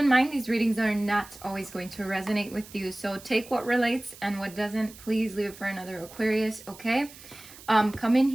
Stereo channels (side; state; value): right; noise; hiss, 19 dB below the sound